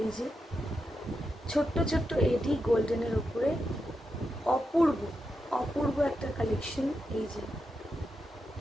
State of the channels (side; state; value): both; normal; correlation 0.86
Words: যে ছোট্ট ছোট্ট এডি গোল্ডেনের উপরে, অপূর্ব অপূর্ব একটা কালেকশন। এই যে